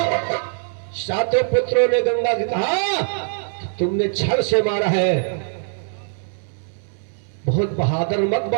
सातों पुत्रों ने गंगा से कहा तुमने छल से मारा है, बहुत बहादुर मत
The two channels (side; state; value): left; silent; 64 dB below the other